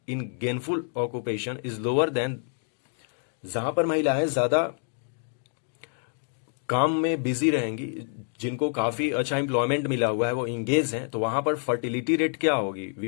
in gainful occupation is lower than, जहां पर महिलाएं ज्यादा काम में बिजी रहेंगी, जिनको काफी अच्छा एम्प्लॉयमेंट मिला हुआ है, वो इंगेज हैं, तो वहां पर फर्टिलिटी रेट क्या होगी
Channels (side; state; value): right; silent; 60 dB below the other